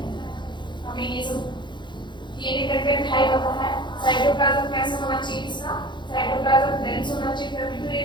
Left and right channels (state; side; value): late; right; 0.22 ms